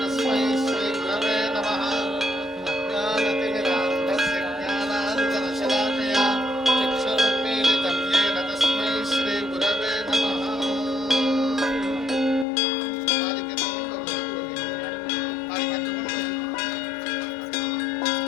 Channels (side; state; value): right; drops out; at 12.5 s